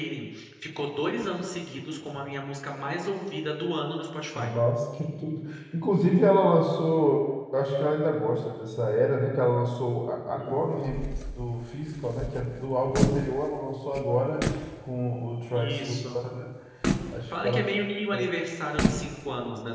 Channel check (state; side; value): identical; both; correlation 1.00